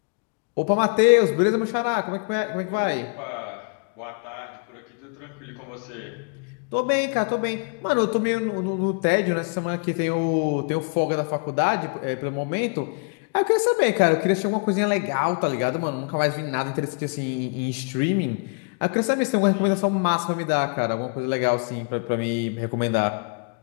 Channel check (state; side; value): quieter; right; 37.1 dB